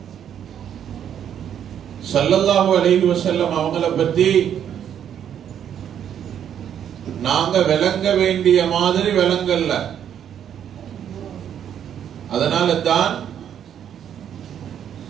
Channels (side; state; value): left; quieter; 9.3 dB